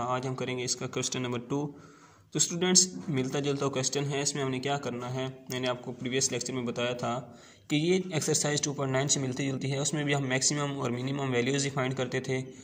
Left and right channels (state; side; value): identical; both; correlation 1.00